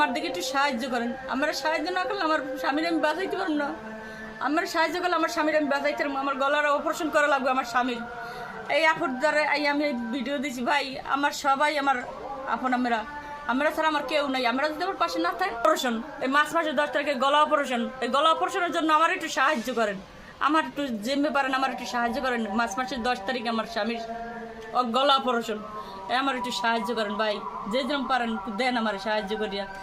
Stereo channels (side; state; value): both; identical; correlation 1.00